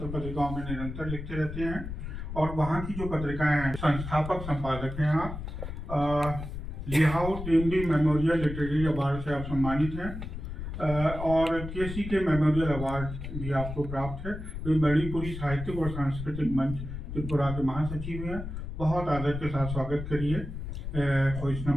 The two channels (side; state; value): left; noise; rumble, 7 dB below the sound